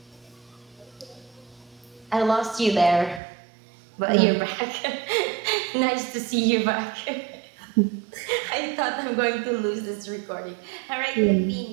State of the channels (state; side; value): drops out; left; at 3.2 s